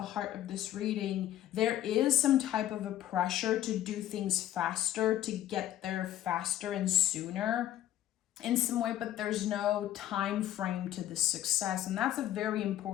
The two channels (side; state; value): right; quieter; 12.4 dB